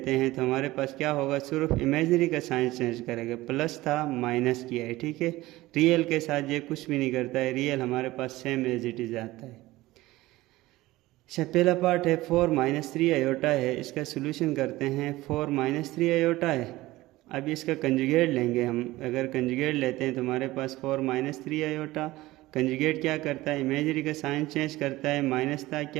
हैं तो हमारे पास क्या होगा? सिर्फ इमेजरी का साइन चेंज करेगा। प्लस था, माइनस किया है, ठीक है। रियल के साथ ये कुछ भी नहीं करता है, रियल हमारे पास सेम एज इट इज आता है। अच्छा, पहला पार्ट है 4 माइनस 3 आयोटा है। इसका सोल्यूशन करते हैं। 4 माइनस 3 आयोटा है। अब इसका कंजुगेट लेंगे हम। अगर कंजुगेट लेते हैं तो हमारे पास 4 माइनस 3 आयोटा। कंजुगेट क्या करता है? इमेजरी का साइन चेंज करता है। माइनस था,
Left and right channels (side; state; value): left; quieter; 18.2 dB